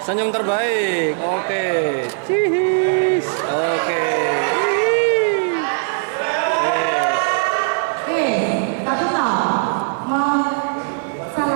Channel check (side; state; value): left; silent; digital silence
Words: Senyum terbaik. Oke. Cihis. Oke. Tapi tahu mau